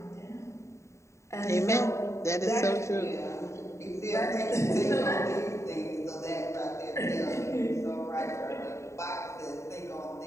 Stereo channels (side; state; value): right; late; 0.14 ms